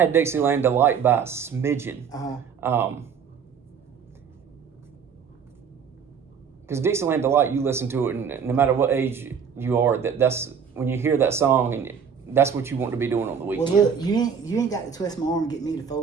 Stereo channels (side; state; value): left; quieter; 6.9 dB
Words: Dixieland Delight by a smidgen. Because Dixieland Delight, you listen to it, and no matter what age you are, that's when you hear that song, and that's what you want to be doing on the weekend. Well, look, you ain't got to twist my arm and get me to